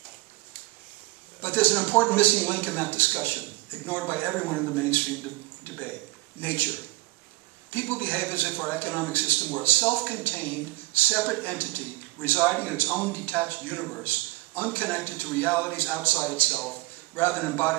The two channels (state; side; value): quieter; left; 22.2 dB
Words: But there's an important missing link in that discussion, ignored by everyone in the mainstream debate: nature. People behave as if our economic system were a self-contained, separate entity residing in its own detached universe, unconnected to realities outside itself, rather than